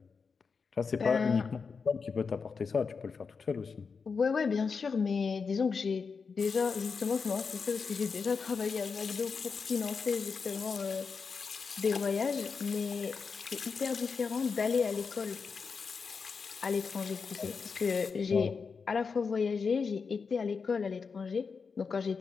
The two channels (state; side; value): quieter; right; 5.3 dB